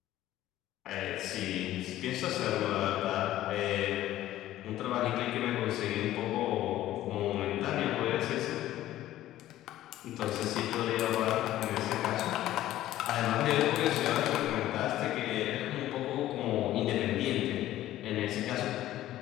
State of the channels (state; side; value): quieter; right; 14.1 dB